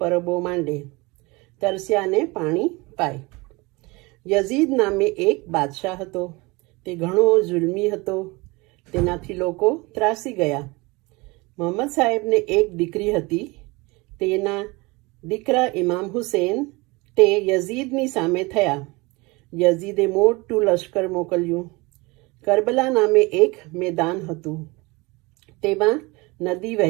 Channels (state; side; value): quieter; left; 24.7 dB